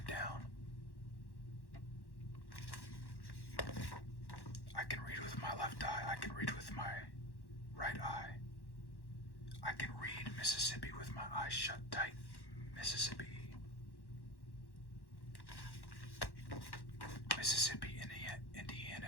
down. I can read with my left eye, I can read with my right eye. I can read Mississippi with my eyes shut tight. Mississippi. Mississippi,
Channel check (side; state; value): right; late; 1.1 ms